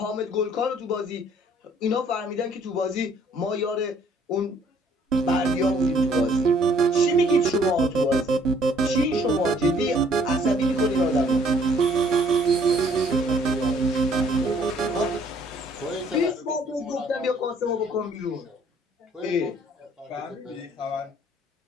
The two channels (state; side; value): normal; both; correlation 0.61